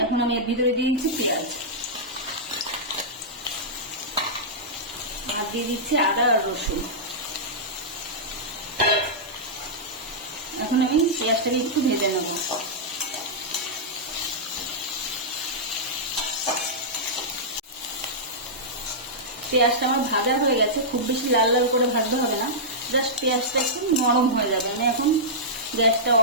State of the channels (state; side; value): normal; both; correlation -0.12